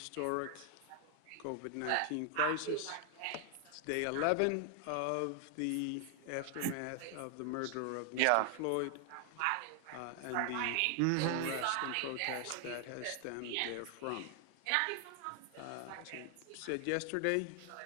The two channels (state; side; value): different; both; correlation 0.00